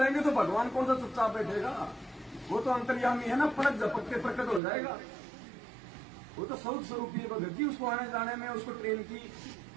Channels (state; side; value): drops out; left; at 4.6 s